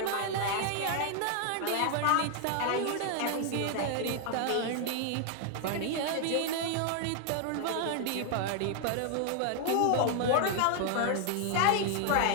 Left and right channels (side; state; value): both; different; correlation 0.00